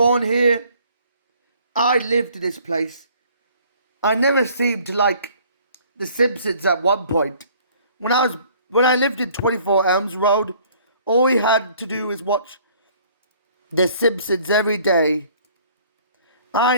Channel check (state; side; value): inverted; both; correlation -0.57